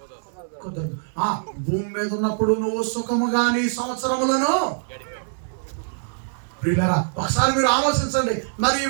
కుదరదు. భూమి మీద ఉన్నప్పుడు నువ్వు సుఖముగా నీ సంవత్సరములను. ప్రియులారా, ఒకసారి మీరు ఆలోచించండి. మరి ఈ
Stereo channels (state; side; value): silent; left; digital silence